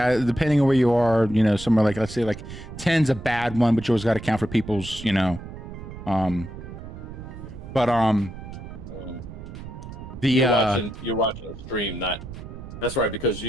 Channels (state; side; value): noise; right; rumble, 12 dB below the sound